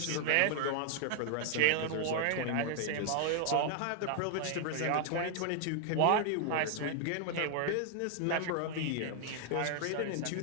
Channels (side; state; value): both; different; correlation 0.00